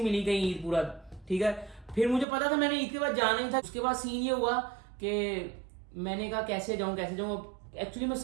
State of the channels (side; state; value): left; drops out; at 2.2 s